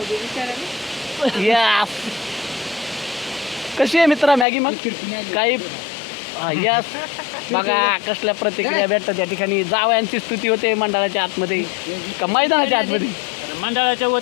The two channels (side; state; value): right; drops out; at 4.5 s